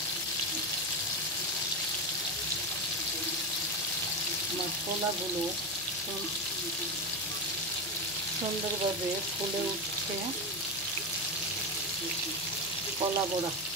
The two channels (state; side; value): noise; left; hum, 19 dB below the sound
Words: আমার কলাগুলো সুন্দরভাবে ফুলে উঠছে। কলা বড়া